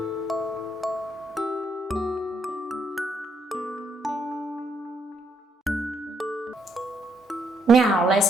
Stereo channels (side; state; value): both; normal; correlation 0.75